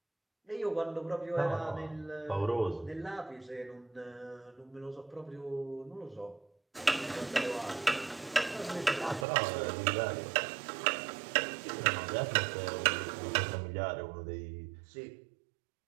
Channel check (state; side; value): drops out; left; at 9.2 s